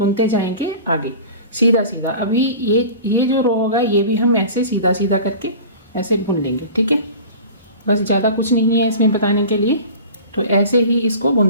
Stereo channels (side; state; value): both; inverted; correlation -0.38